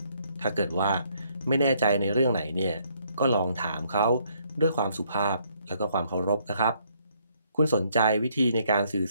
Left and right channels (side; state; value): both; inverted; correlation -0.69